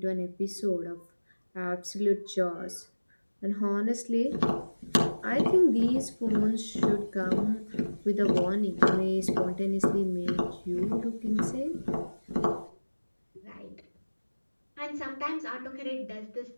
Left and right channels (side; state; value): both; inverted; correlation -1.00